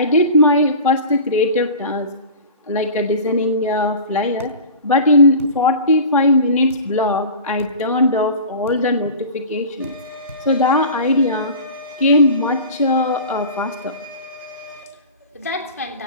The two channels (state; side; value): inverted; both; correlation -0.36